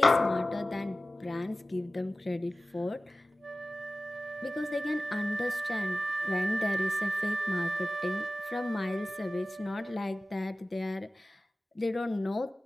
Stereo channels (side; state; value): both; normal; correlation 0.96